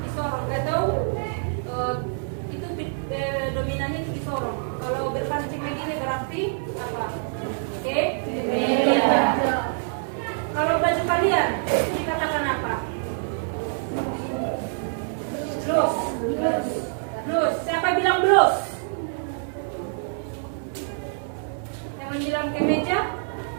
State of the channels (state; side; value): silent; left; digital silence